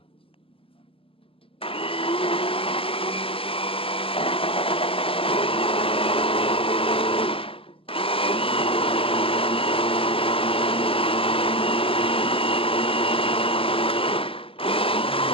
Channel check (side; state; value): right; late; 0.27 ms